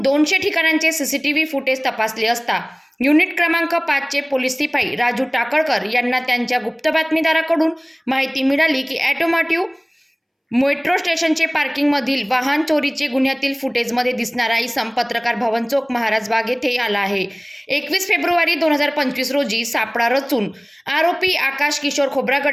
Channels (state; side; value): identical; both; correlation 1.00